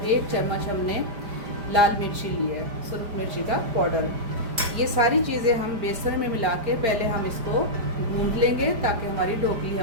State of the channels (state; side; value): late; left; 4.9 ms